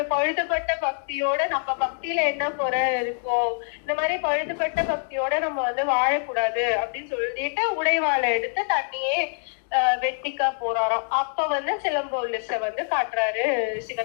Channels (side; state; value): right; silent; digital silence